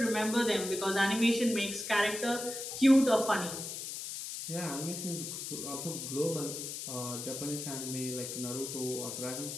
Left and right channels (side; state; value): left; noise; hiss, 6 dB below the sound